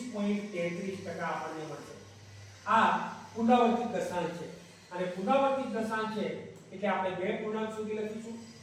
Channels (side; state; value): both; identical; correlation 1.00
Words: આપણને મળશે. આ પુનરાવર્તિત દશાંશ છે અને પુનરાવર્તિત દશાંશ છે એટલે આપણે બે પૂર્ણાંક સુધી લખીશું.